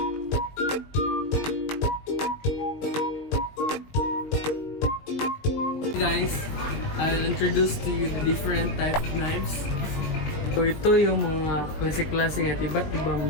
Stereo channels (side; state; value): right; late; 20 ms